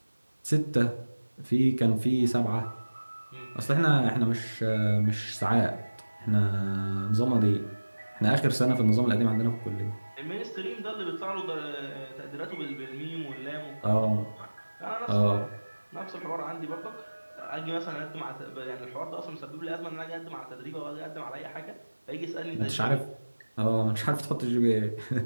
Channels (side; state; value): both; inverted; correlation -1.00